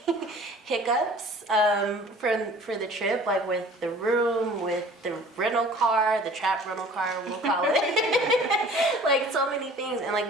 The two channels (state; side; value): normal; both; correlation 0.48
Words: hiccups for the trip, like with the room, with the rental car, the trap rental car, we'll call it. Like so many things, and like